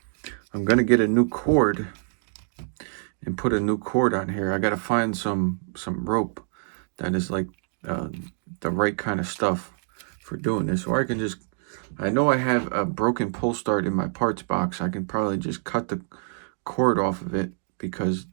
gonna get a new cord and put a new cord on here. I gotta find some rope that is like the right kind of stuff for doing this, or I can just, I know I have a broken pull start in my parts box. I can probably just cut the cord off of it because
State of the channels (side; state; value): left; silent; digital silence